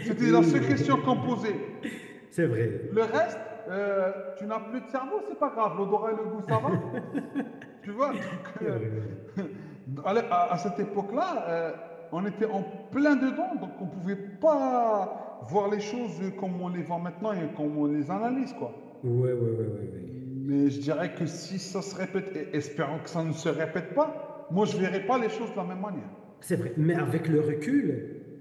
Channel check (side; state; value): both; identical; correlation 1.00